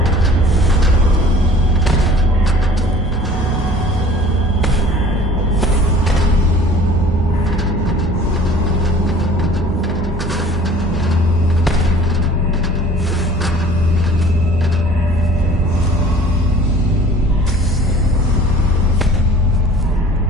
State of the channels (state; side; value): normal; both; correlation 0.48